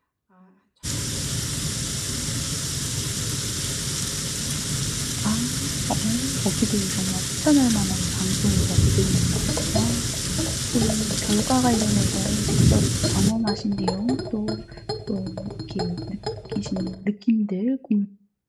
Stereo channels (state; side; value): identical; both; correlation 1.00